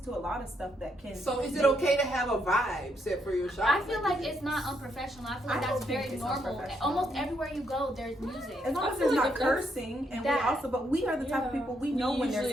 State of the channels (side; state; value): both; normal; correlation 0.76